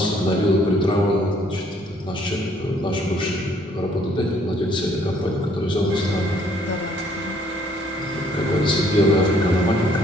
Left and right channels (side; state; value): both; normal; correlation 0.63